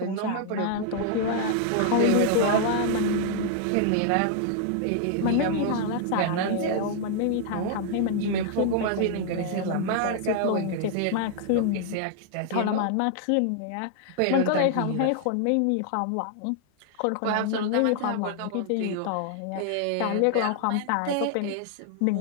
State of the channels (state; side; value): different; both; correlation 0.00